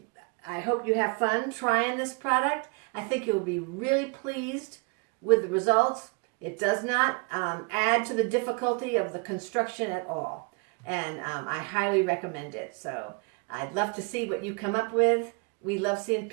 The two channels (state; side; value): quieter; left; 32.9 dB